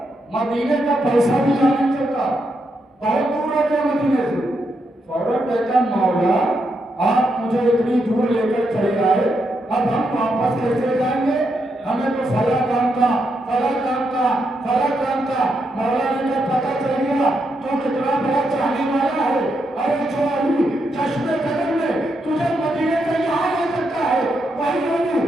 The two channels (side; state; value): both; normal; correlation 0.81